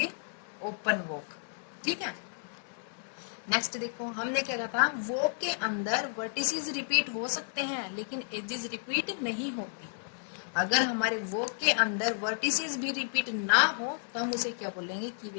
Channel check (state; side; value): silent; right; digital silence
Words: ओपन वॉक। ठीक है, नेक्स्ट देखो हमने क्या कहा था, वॉक के अंदर वर्टिसेस रिपीट हो सकते हैं लेकिन एजेस रिपीट नहीं होती। अगर हमारे वॉक के अंदर वर्टिसेस भी रिपीट ना हो तो हम उसे क्या बोलेंगे